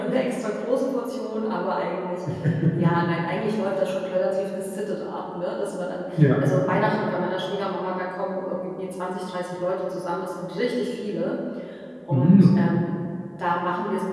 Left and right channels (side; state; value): both; identical; correlation 1.00